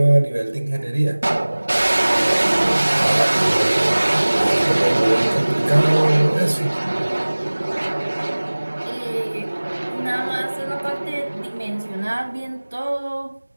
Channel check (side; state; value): both; inverted; correlation -1.00